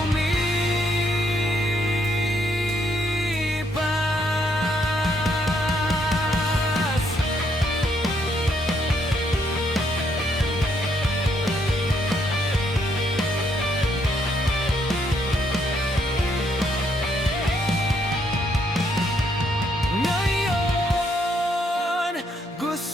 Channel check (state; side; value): normal; both; correlation 0.73